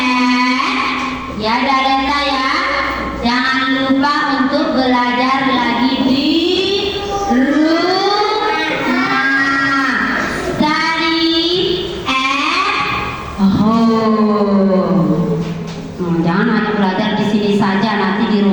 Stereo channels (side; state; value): both; identical; correlation 1.00